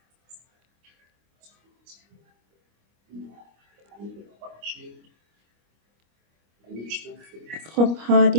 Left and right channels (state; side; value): late; left; 25 ms